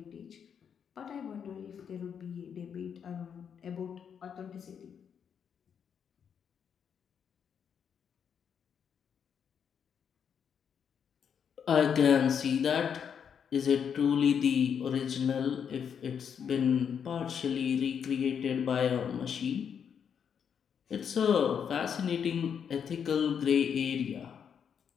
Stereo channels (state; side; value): quieter; right; 7.5 dB